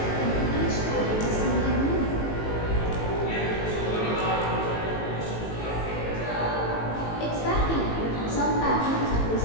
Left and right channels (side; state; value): right; late; 18 ms